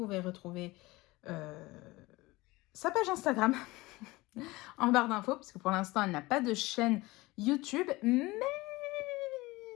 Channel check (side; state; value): right; quieter; 21.0 dB